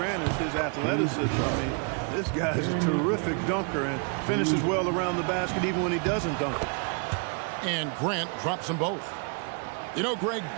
is his athleticism. I mean, this guy's a terrific dunker and finishes well around the basket even when he doesn't dunk. And Grant drops them both. You know, Greg,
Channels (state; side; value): quieter; left; 37.3 dB